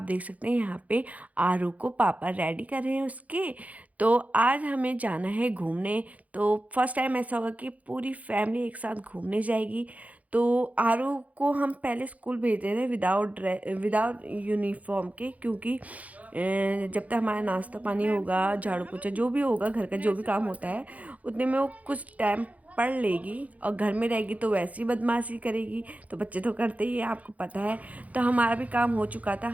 देख सकते हैं यहाँ पे आरू को पापा रेडी कर रहे हैं उसके। तो आज हमें जाना है घूमने। तो फर्स्ट टाइम ऐसा होगा कि पूरी फैमिली एक साथ घूमने जाएगी। तो आरू को हम पहले स्कूल भेज रहे थे विदाउट यूनिफॉर्म के, क्योंकि जब तक हमारा नाश्ता पानी होगा, झाड़ू पोछा जो भी होगा, घर का जो भी काम होता है, उतने में वो कुछ टाइम पढ़ लेगी। और घर में रहेगी तो वैसी बदमाशी करेगी। तो बच्चे तो करते ही है, आपको पता है। तो हमारा भी काम हो चुका था,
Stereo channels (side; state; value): left; late; 0.071 ms